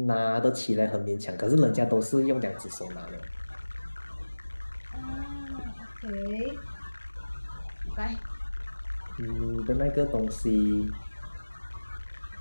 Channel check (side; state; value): both; inverted; correlation -1.00